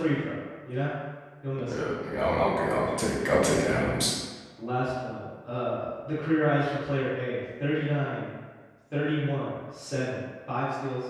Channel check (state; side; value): identical; both; correlation 1.00